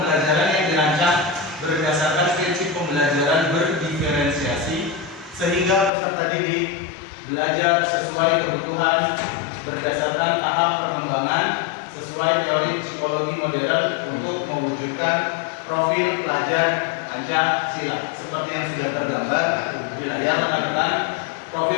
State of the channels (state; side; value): drops out; right; at 5.9 s